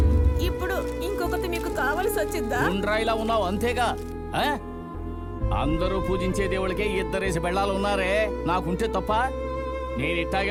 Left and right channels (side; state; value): both; identical; correlation 1.00